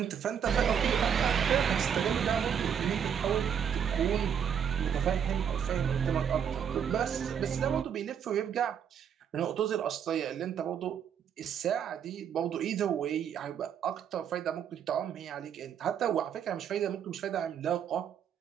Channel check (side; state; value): left; quieter; 8.2 dB